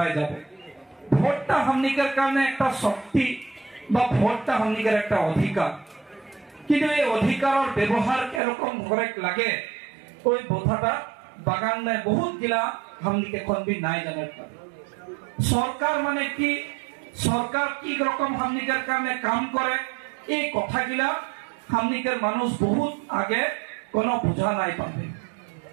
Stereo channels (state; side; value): drops out; left; at 8.4 s